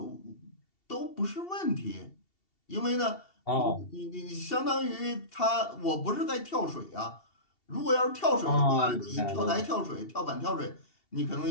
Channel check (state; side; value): late; right; 2.7 ms